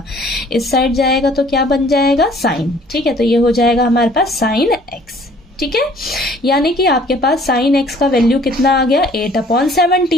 इस साइड जाएगा तो क्या बन जाएगा, साइन। ठीक है, तो ये हो जाएगा हमारे पास साइन x। ठीक है, यानी कि आपके पास साइन x का वैल्यू कितना आ गया,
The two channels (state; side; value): normal; both; correlation 0.56